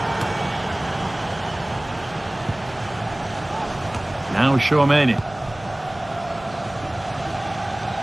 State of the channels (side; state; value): right; noise; hum, 20 dB below the sound